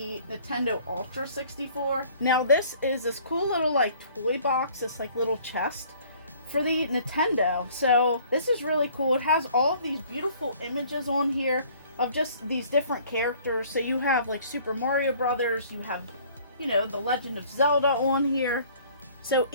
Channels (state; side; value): inverted; both; correlation -0.55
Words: Nintendo Ultra 64. Now this is this cool little toy box, this little chest for the Nintendo. So this is really cool. It has all of these beautiful images on here of just these different characters. So you have Super Mario Brothers, you have, The Legend of Zelda on here. So